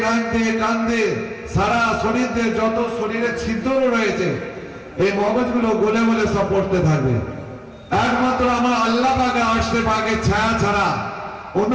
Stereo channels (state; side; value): identical; both; correlation 1.00